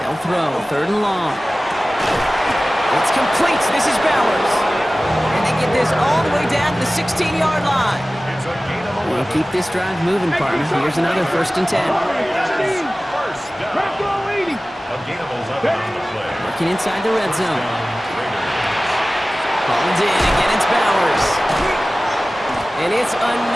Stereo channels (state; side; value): normal; both; correlation 0.97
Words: throw. 3rd and long. It's complete. This is Bowers. And they get this all the way down to the 16-yard line. We'll keep this drive moving, partner. Here's another 1st and 10. Working inside the red zone. Hauled in. Again, it's Bowers. And it's